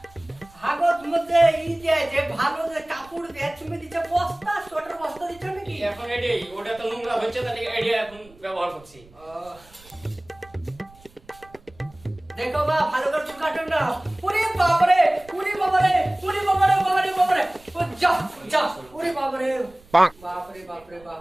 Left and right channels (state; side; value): noise; right; rumble, 26 dB below the sound